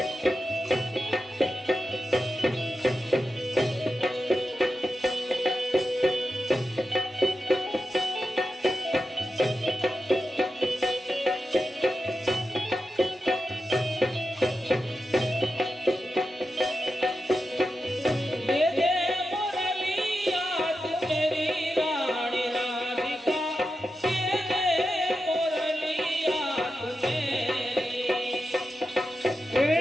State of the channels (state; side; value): normal; both; correlation 0.90